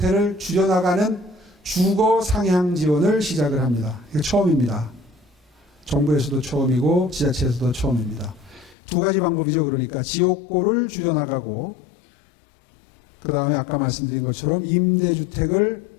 줄여나가는 주거 상향 지원을 시작을 합니다. 이게 처음입니다. 정부에서도 처음이고 지자체에서도 처음입니다. 두 가지 방법이죠. 그러니까 지옥고를 줄여나가고 그 다음에 아까 말씀드린 것처럼 임대주택을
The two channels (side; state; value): right; drops out; at 8.8 s